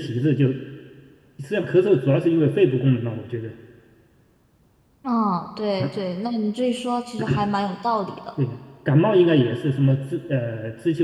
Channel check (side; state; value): both; identical; correlation 1.00